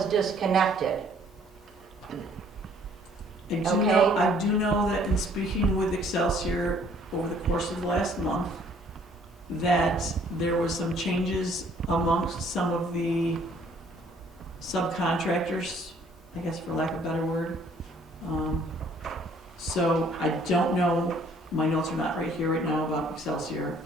disconnected. Okay. I do know that in speaking with Excelsior over the course of the last month, that there was some changes amongst some of the subcontractors, I guess for lack of a better word. So I don't know, my notes are not right here right now about Excelsior.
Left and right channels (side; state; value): both; normal; correlation 0.59